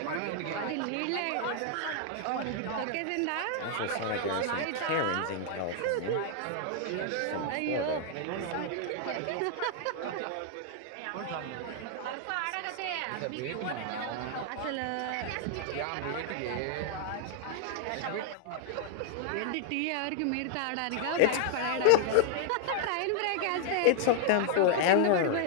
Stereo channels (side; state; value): both; different; correlation 0.00